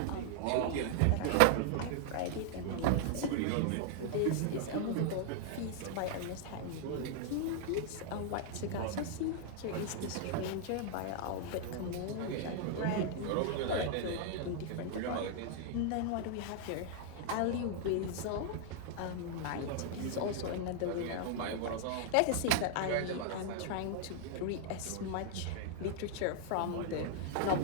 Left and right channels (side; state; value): both; different; correlation 0.00